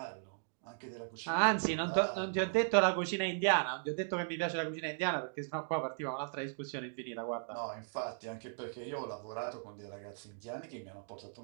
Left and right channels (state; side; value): silent; left; digital silence